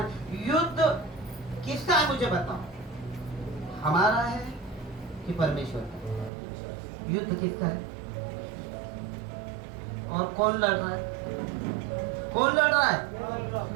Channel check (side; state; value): left; drops out; at 6.3 s